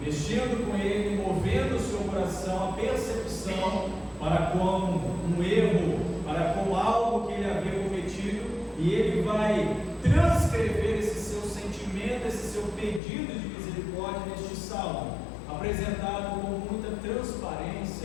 com ele, movendo o seu coração, a percepção para com um erro, para com algo que ele havia cometido, e ele vai transcrever esse seu sentimento, esse seu pedido de misericórdia neste salmo, apresentado com muita transparência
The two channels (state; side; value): drops out; right; at 13.0 s